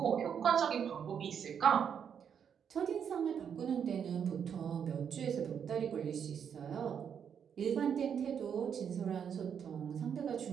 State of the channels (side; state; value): left; quieter; 7.7 dB